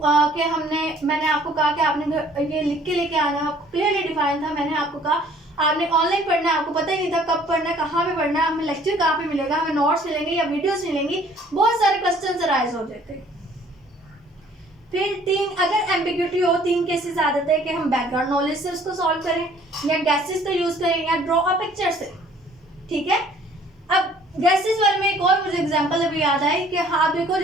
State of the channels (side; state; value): both; normal; correlation 0.56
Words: मैंने आपको कहा कि आपने ये लिख के लेके आना है, आपको क्लियरली डिफाइन था। मैंने आपको कहा आपने ऑनलाइन पढ़ना है, आपको पता ही नहीं था कब पढ़ना है, कहाँ पे पढ़ना है, हमें लेक्चर कहाँ पे मिलेगा, हमें नोट्स मिलेंगे या वीडियोस मिलेंगी, बहुत सारे क्वेश्चन अराइज हो जाते। फिर 3, अगर एम्बिग्यूटी हो, 3 केसेस आ जाते हैं कि हम बैकग्राउंड नॉलेज से उसको सॉल्व करें, या गैसेस का यूज करें, या ड्रॉ अ पिक्चर से, ठीक है। अब गैसेस वाले में एक और मुझे एग्जांपल अभी याद आई कि हाँ देखो,